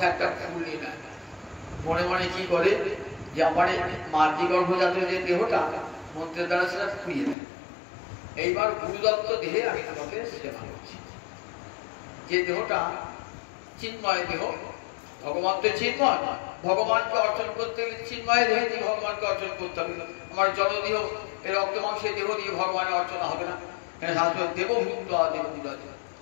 একটা ফুল নিয়ে নেয়, মনে মনে কি করে যে আমার মাতৃ গর্ভজাত যে দেহটা মন্ত্রের দ্বারা সেটা ফুরিয়ে দেয়। এইবার গুরুদত্ত দেহে আমি তোমাকে সেবা করছি। যে দেহটা চিন্ময় দেহ, ভগবান তো চিন্ময়, ভগবানকে অর্চন করতে গেলে চিন্ময় দেহে দিয়ে ভগবানকে অর্চন করতে হবে। আমার জলদেহ এই রক্ত মাংসের দেহ দিয়ে ভগবানের অর্চনা হবে না। শাস্ত্র দেবভূত দেবভূত,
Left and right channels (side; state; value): right; drops out; at 7.4 s